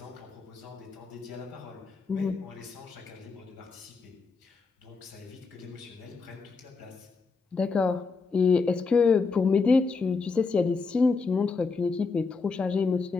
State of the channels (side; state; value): right; quieter; 4.5 dB